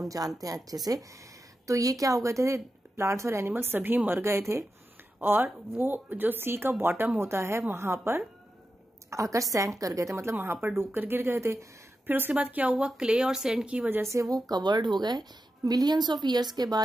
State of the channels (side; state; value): both; normal; correlation 0.90